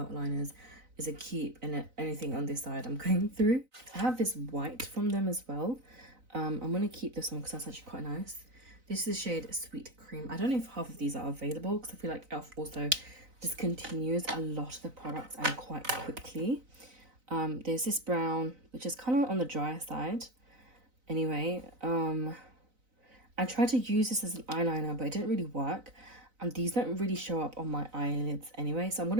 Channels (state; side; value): late; left; 4.0 ms